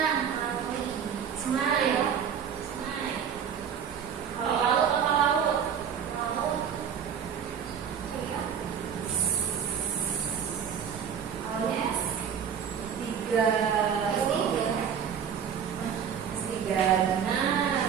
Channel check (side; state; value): left; quieter; 7.8 dB